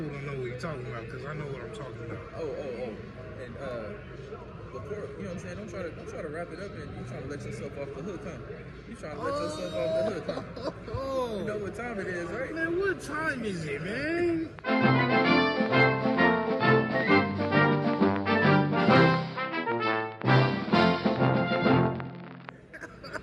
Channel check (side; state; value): both; identical; correlation 1.00